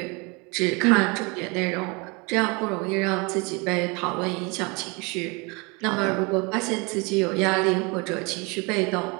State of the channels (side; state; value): left; quieter; 28.8 dB